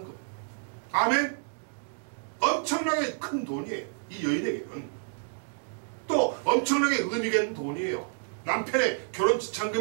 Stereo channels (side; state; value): left; silent; digital silence